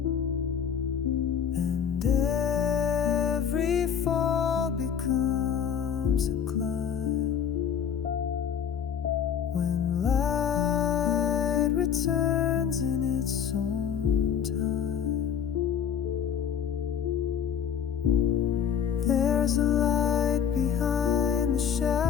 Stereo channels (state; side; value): quieter; right; 8.0 dB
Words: And every fall becomes comes a climb. When light returns in its own time, there's a light behind the